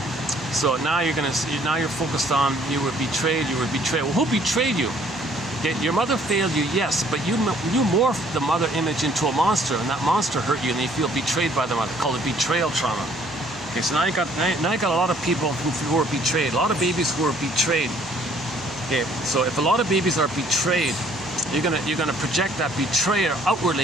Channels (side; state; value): both; normal; correlation 0.60